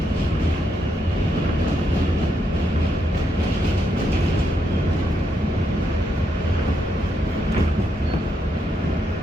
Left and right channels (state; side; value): normal; both; correlation 0.79